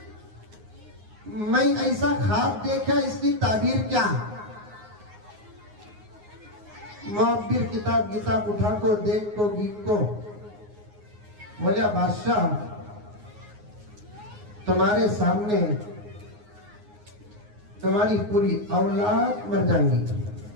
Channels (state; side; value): late; left; 9.6 ms